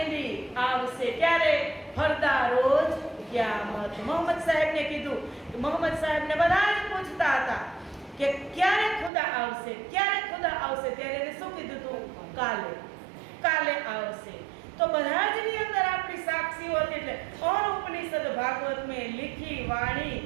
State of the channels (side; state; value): left; drops out; at 9.1 s